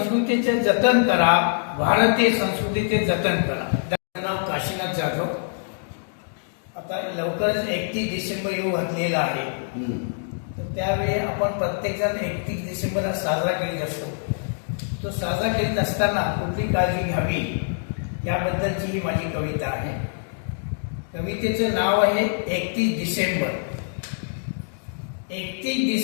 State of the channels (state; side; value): silent; right; digital silence